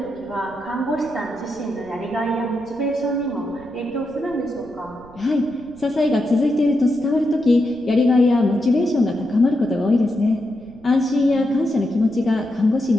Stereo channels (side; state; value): right; noise; rumble, 24 dB below the sound